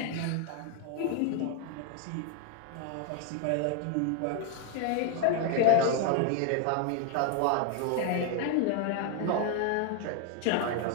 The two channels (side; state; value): both; different; correlation 0.00